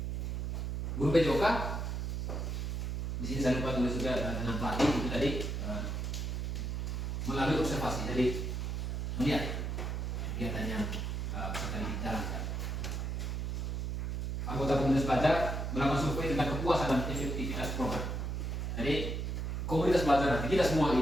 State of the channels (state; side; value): noise; right; hum, 2 dB below the sound